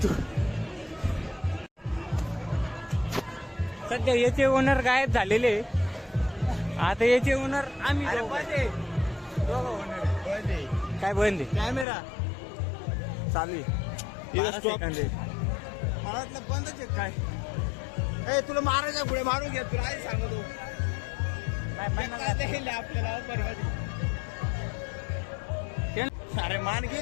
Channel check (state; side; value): drops out; right; at 11.9 s